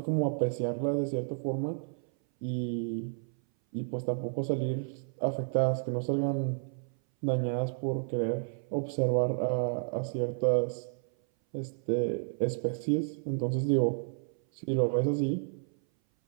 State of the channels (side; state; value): left; silent; 57 dB below the other